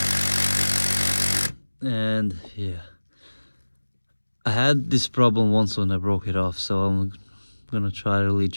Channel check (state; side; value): inverted; both; correlation -1.00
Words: and yeah, I had this problem once when I broke it off, so I'm gonna try really